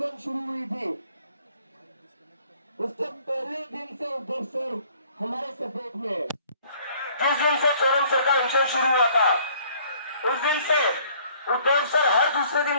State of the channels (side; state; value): both; inverted; correlation -0.58